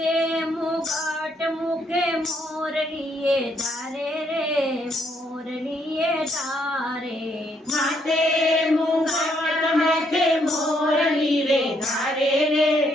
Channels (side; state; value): both; normal; correlation 0.72